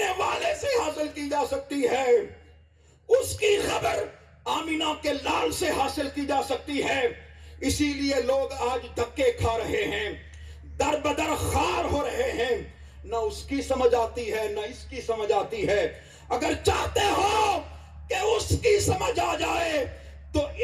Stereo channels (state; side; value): identical; both; correlation 1.00